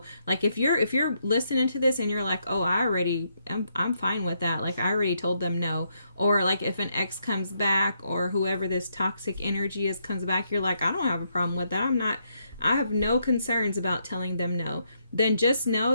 Like if you're listening to this and you're like, oh, I'm fine with that. Like I already told them no. Or like if an ex comes back, or whoever this toxic energy is comes back, you're like, I don't have a problem with that. I have no concerns about telling them no. Then just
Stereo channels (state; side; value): inverted; both; correlation -0.77